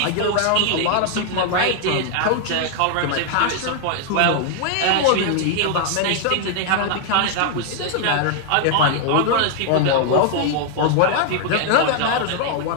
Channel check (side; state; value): both; different; correlation 0.00